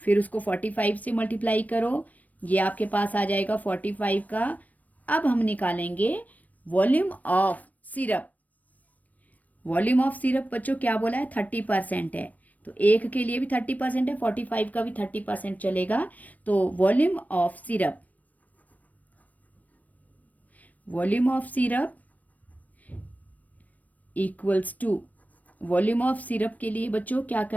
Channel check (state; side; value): late; right; 0.074 ms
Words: फिर उसको 45 से मल्टीप्लाई करो, ये आपके पास आ जाएगा 45 का। अब हम निकालेंगे volume of syrup. Volume of syrup बच्चों क्या बोला है? 30% है, तो एक के लिए भी 30% है, 45 का भी 30% चलेगा। तो volume of syrup, volume of syrup equals to, volume of syrup के लिए बच्चों क्या